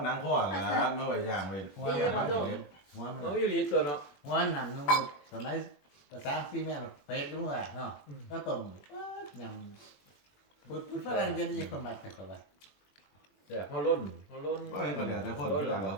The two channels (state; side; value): late; right; 21 ms